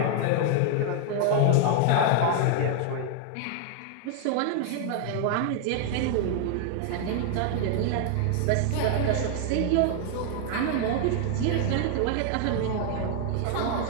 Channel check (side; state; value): both; different; correlation 0.00